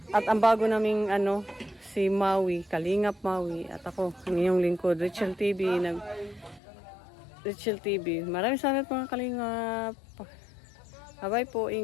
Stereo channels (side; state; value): right; drops out; at 6.6 s